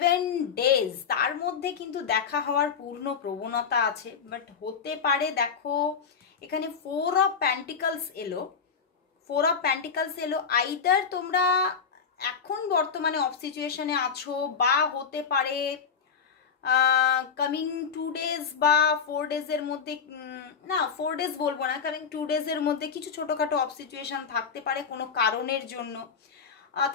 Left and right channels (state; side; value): quieter; right; 6.3 dB